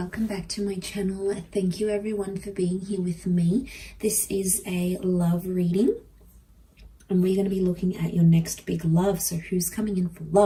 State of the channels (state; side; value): identical; both; correlation 1.00